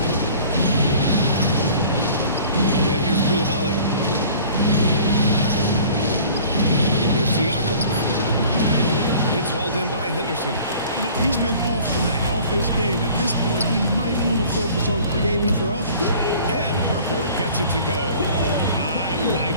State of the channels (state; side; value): inverted; both; correlation -0.48